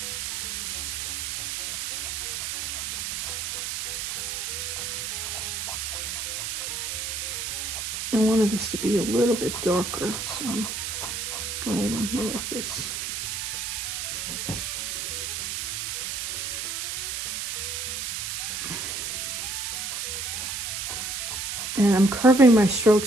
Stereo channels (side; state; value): right; noise; hiss, 3 dB below the sound